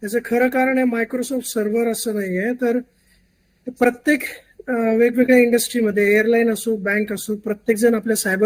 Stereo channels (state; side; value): identical; both; correlation 1.00